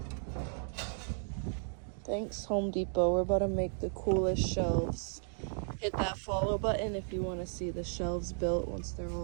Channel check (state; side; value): silent; left; 55 dB below the other